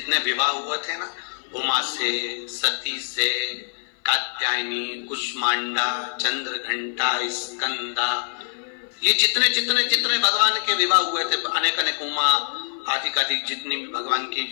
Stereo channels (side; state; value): right; silent; 55 dB below the other